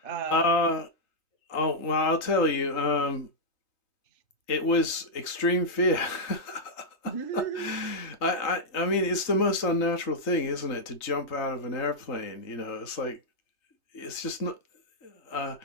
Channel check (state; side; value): late; right; 3.3 ms